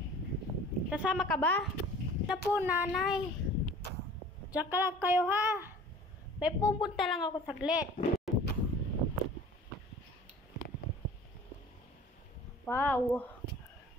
Kasama ka ba? Na po, nanay. Diyan ka lang kayo, ha? May pupunta lang ako saglit. Wow.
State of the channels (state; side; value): normal; both; correlation 0.45